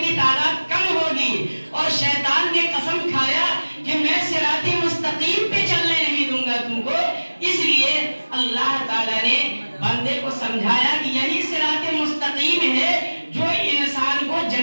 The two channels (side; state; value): both; inverted; correlation -1.00